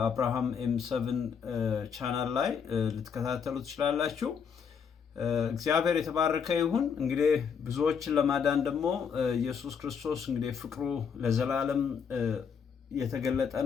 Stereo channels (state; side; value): quieter; right; 6.7 dB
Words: ኤም7 ቻናል ላይ ልትከታተሉ ትችላላችሁ። እግዚአብሔር የተባረከ ይሁን። እንግዲህ ብዙዎችን ለማዳን ደግሞ ኢየሱስ ክርስቶስ እንግዲህ ፍቅሩ ለዘላለም የተገለጠ